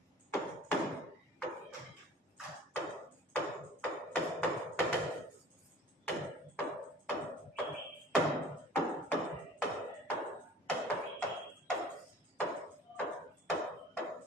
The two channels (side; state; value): both; normal; correlation 0.46